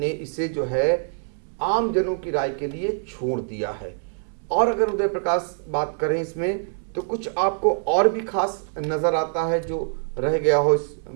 इसे जो है आम जनों की राय के लिए छोड़ दिया है। और अगर उदय प्रकाश बात करें इसमें, तो कुछ आपको और भी खास नज़र आता है जो रह गया हो इस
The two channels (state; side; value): silent; left; 62 dB below the other